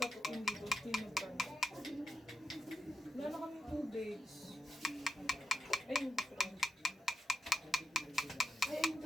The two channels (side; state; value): both; normal; correlation 0.86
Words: taputin dito. Tinagpan. Wala na kami tubig. Ayun. Ay, ayun.